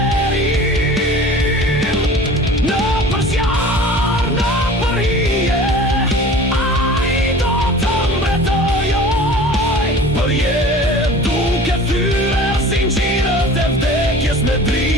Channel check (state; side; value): normal; both; correlation 0.42